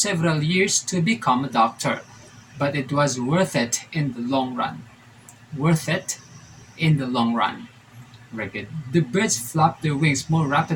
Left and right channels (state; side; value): identical; both; correlation 1.00